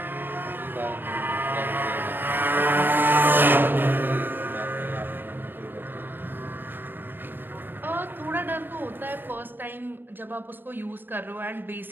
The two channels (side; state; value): left; late; 0.095 ms